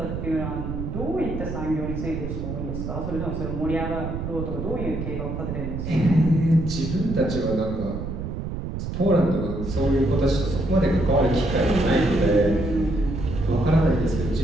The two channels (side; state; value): right; noise; rumble, 5 dB below the sound